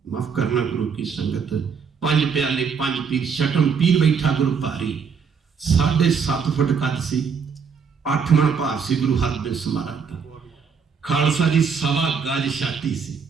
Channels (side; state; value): left; quieter; 6.1 dB